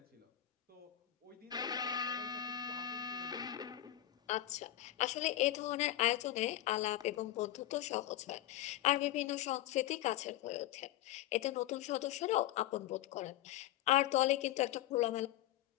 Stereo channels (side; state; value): right; quieter; 13.8 dB